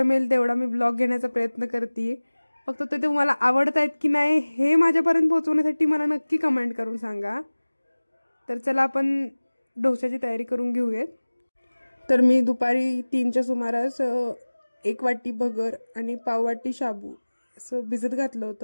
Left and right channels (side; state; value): both; inverted; correlation -1.00